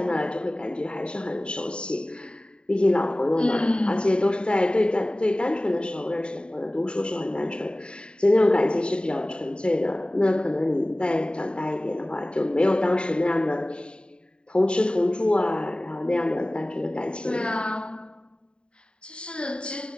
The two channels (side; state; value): right; late; 0.050 ms